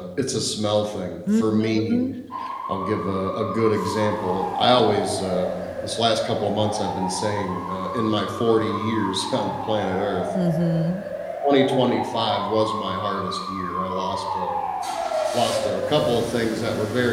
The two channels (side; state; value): both; identical; correlation 1.00